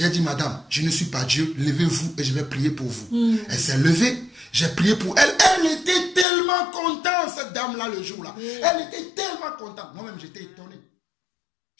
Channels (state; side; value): drops out; right; at 6.2 s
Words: dit, madame, je ne suis pas Dieu. Levez-vous et je vais prier pour vous. Elle s'est levée. J'ai prié pour elle. Elle était tellement contente, cette dame-là, le jour-là. Elle était tellement contente. Moi-même, j'étais étonné.